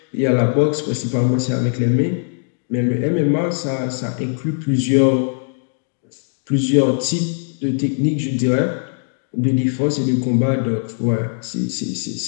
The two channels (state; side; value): silent; right; 66 dB below the other